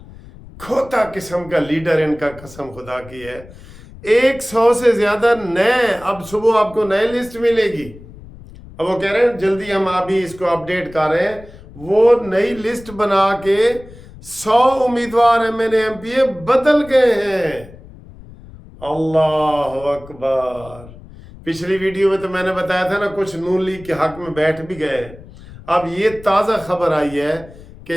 खोता किस्म का लीडर इनका, कसम खुदा की है। 100 से ज्यादा नए, अब सुबह आपको नई लिस्ट मिलेगी। अब वो कह रहे हैं जल्दी हम अभी इसको अपडेट कर रहे हैं। वो नई लिस्ट बना के 100 उम्मीदवार MNA MPA बदल गए हैं। अल्लाह अकबर। पिछली वीडियो में तो मैंने बताया था ना, कुछ नून लीग के हक में बैठ भी गए। अब ये ताज़ा खबर आई है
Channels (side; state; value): left; noise; rumble, 19 dB below the sound